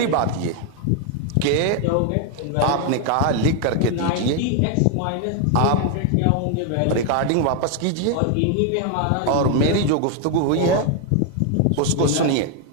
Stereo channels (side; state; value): both; different; correlation 0.00